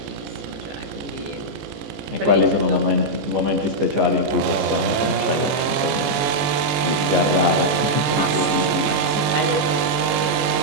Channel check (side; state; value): left; late; 14 ms